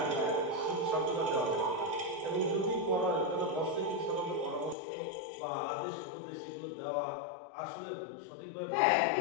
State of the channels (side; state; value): right; drops out; at 4.8 s